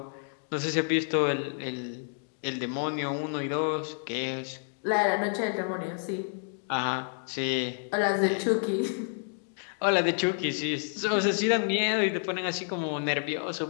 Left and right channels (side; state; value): right; silent; 58 dB below the other